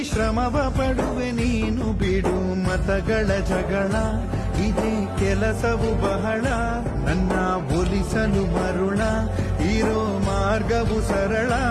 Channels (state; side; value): identical; both; correlation 1.00